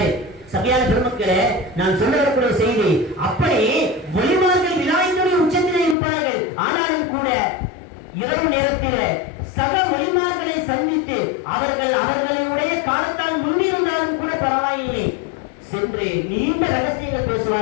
சபையான பெருமக்களே, நான் சொல்ல வரக்கூடிய செய்தி, அப்படி வலிமார்கள் விநாயகனுடைய உச்சத்திலே இருப்பார்கள். ஆனாலும் கூட இரவு நேரத்திலே சக வலிமார்களை சந்தித்து அவர்களுடைய காலத்தால் முன்னிருந்தாலும் கூட பரவாயில்லை சென்று நீண்ட ரகசியங்கள்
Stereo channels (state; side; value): drops out; right; at 6.0 s